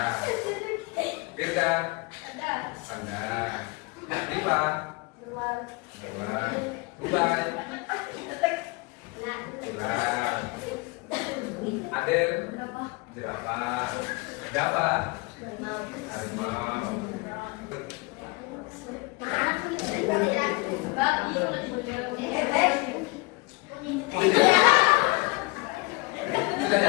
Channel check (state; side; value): quieter; right; 26.1 dB